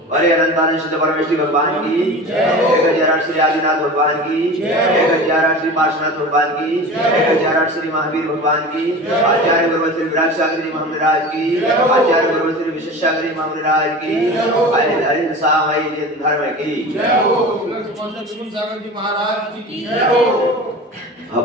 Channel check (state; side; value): normal; both; correlation 0.34